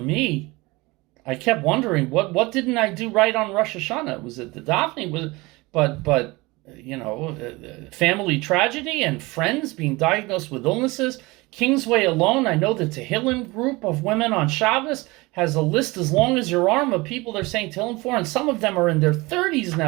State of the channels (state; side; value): quieter; left; 23.1 dB